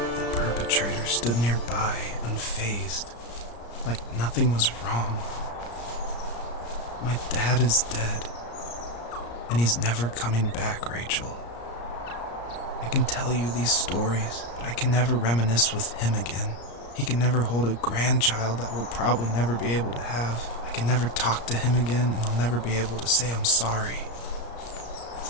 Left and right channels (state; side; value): late; right; 34 ms